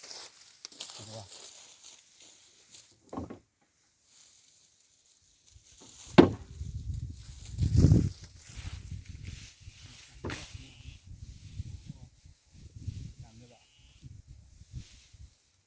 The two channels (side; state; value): both; identical; correlation 1.00